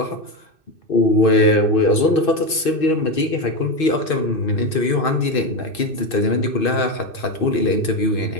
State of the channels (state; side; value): late; right; 2.6 ms